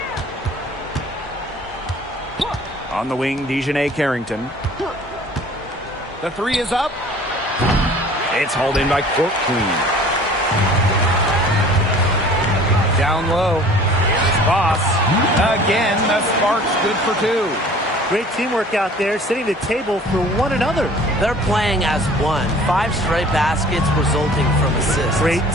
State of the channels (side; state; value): both; normal; correlation 0.48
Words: On the wing, Dejanay Carrington. The three is up. It's hauled in by Court Queen. Down low. Here's Boss. Again, the Sparks good for two. Great teamwork out there, setting the table for one another. They're playing as one. 5 straight baskets resulting from assists. Great